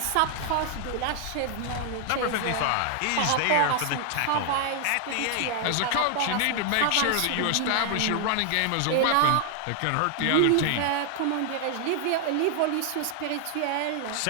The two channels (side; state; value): both; different; correlation 0.00